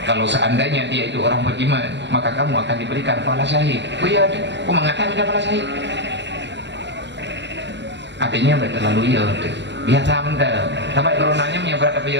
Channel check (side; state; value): left; late; 0.52 ms